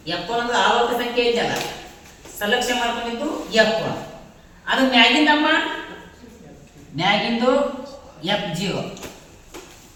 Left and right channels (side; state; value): both; identical; correlation 1.00